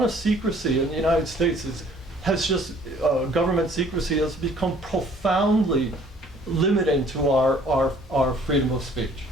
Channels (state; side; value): normal; both; correlation 0.57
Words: of secrecy in the United States government secrecy has become profoundly limiting to our freedom of speech.